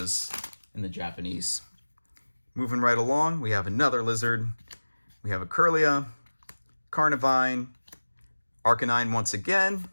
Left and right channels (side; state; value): both; inverted; correlation -1.00